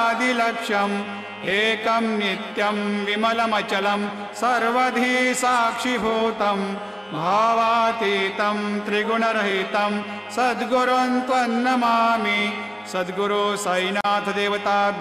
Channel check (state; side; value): identical; both; correlation 1.00